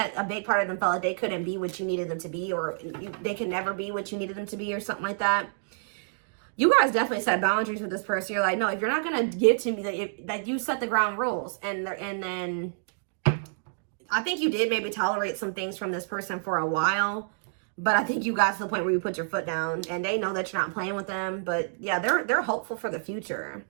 a big part of them felt like they couldn't be what you needed them to be, or they could never be what you needed them to be, or something like that. You guys definitely set boundaries with this person. You're like, no, if you're not going to give to me, that you set the ground rules. And then I think you did maybe tolerate some things from this person for a while. But I think you got to the point where you put your foot down, and they know that you're not playing with them. But yeah, they're hopeful for the future.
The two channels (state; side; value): silent; left; digital silence